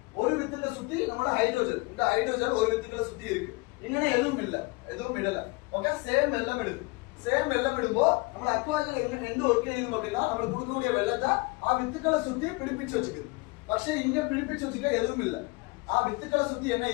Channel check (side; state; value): right; quieter; 25.7 dB